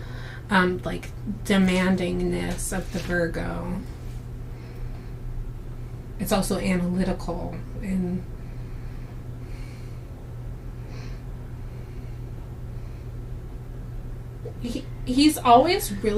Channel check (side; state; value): both; identical; correlation 1.00